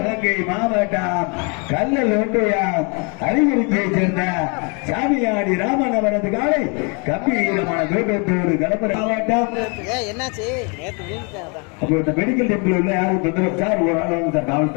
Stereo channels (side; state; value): right; quieter; 34.1 dB